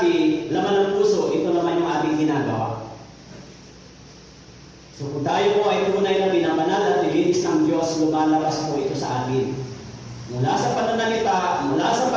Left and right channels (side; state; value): both; identical; correlation 1.00